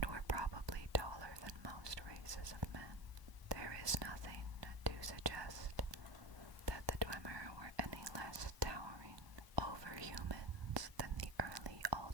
were probably taller than most races of men. There is nothing to suggest that the Dwemer were any less towering over humans than the early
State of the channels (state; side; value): late; left; 1.0 ms